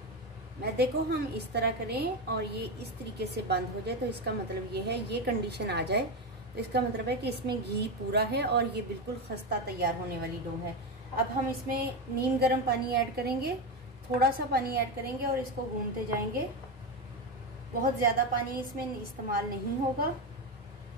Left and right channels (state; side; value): normal; both; correlation 0.14